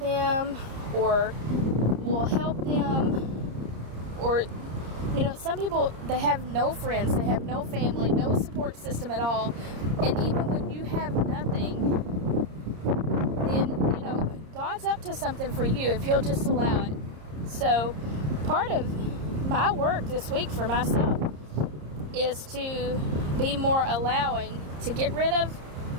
or will help them. Or, some people, they have no friends, they have no family, no support system at all. And even when you have nothing, then, God's up to something for you if He'll just allow it. So, part of my work this week for myself is to be more allowing, to get rid of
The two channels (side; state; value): left; late; 30 ms